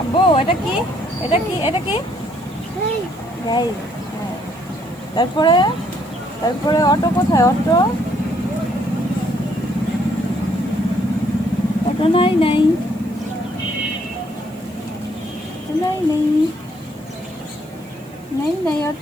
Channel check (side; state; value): right; noise; hiss, 28 dB below the sound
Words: আব্বু, এটা কি? এটা কি? এটা কি? যাই। হ্যাঁ। তারপরে, তারপরে অটো কোথায়? অটো, অটো নাই, নাই নাই, নেই নেই, নেই